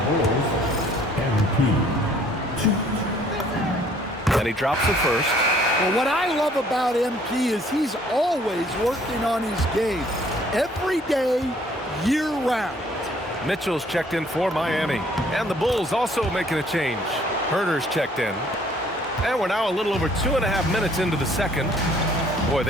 And he drops it first. Well, what I love about MP is he's always working on his game. Every day, year-round. Mitchell's checked in for Miami. And the Bulls also making a change. Herter's checked in. And we're now a little over 2.5 minutes into the second. Boy,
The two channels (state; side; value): normal; both; correlation 0.60